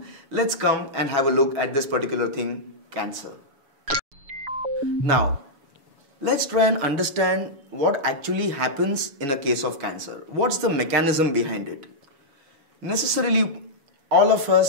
Let's come and have a look at this particular thing, cancer. Now, let's try and understand what actually happens in a case of cancer. What's the mechanism behind it? Necessarily, all of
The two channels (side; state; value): left; late; 7.1 ms